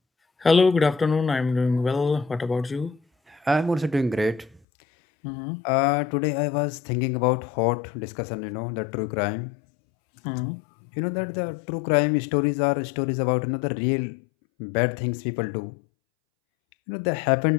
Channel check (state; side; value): drops out; right; at 4.6 s